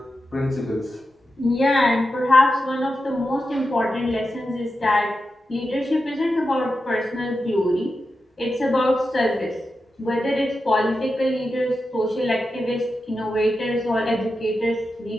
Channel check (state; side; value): normal; both; correlation 0.90